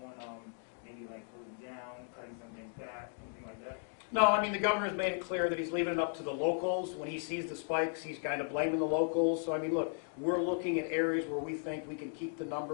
on maybe like closing down, cutting some things back, anything like that? No, I mean, the governor's made it clear that he's leaving it up to the locals. When he sees the spikes, he's kind of blaming the locals. So, I mean, look, we're looking at areas where we think we can keep the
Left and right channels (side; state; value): right; silent; 54 dB below the other